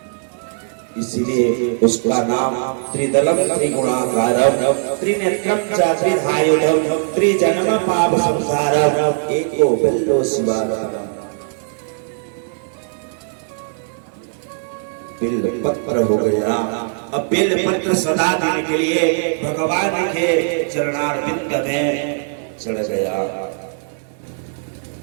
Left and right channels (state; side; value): silent; left; digital silence